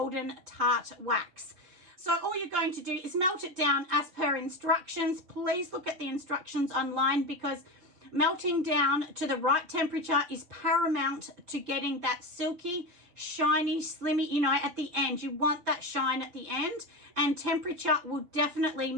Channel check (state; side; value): late; left; 5.8 ms